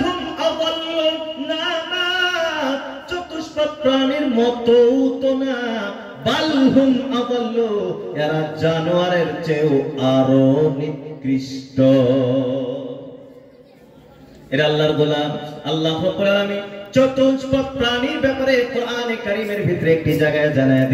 আযাল্লু, না না, চতুষ্পদ প্রাণীর মতো তো না, বালহুম আযাল্লু, এরা জানোয়ারের চেয়েও আরো নিকৃষ্ট। এরা আল্লাহর গোলাম। আল্লাহ রাব্বুল আলামিন চতুষ্পদ প্রাণীর ব্যাপারে কোরআনে কারীমের ভিতরে একটি জায়গায় জানায়া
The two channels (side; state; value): both; identical; correlation 1.00